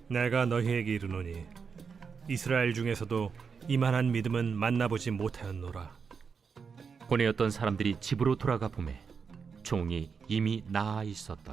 내가 너희에게 이르노니 이스라엘 중에서도 이만한 믿음은 만나보지 못하였노라. 보내었던 사람들이 집으로 돌아가 보매 종이 이미 나아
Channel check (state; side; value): quieter; left; 5.8 dB